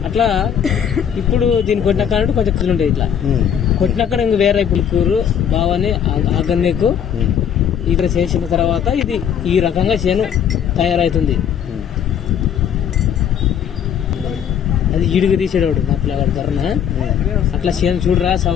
అట్లా ఇప్పుడు దీన్ని కొట్టినాక కొంచెం కళ్ళు ఉండేది. ఇట్లా కొట్టినాక ఇంక వేరే పులుకూరు బావని ఆగన్నేకు ఇక్కడ చేసిన తర్వాత ఇది ఈ రకంగా చేను తయారవుతుంది. అది ఈడుగు తీసేవాడు మా పిల్లగాడు ధరన. అట్లా చేను చూడరా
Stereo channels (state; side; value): quieter; right; 8.6 dB